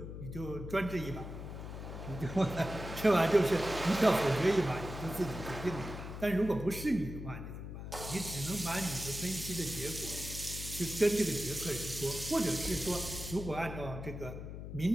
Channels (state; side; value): noise; left; hum, 9 dB below the sound